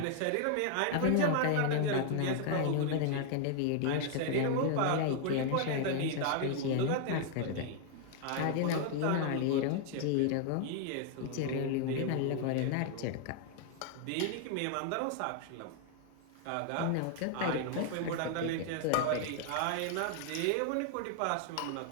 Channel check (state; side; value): different; both; correlation 0.00